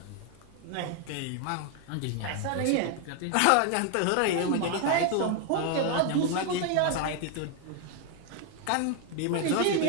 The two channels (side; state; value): both; different; correlation 0.01